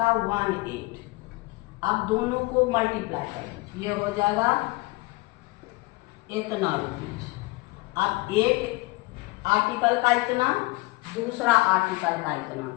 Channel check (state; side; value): quieter; right; 22.8 dB